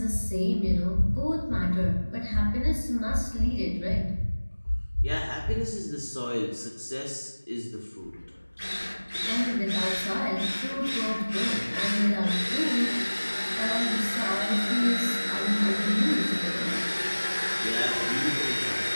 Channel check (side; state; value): both; inverted; correlation -1.00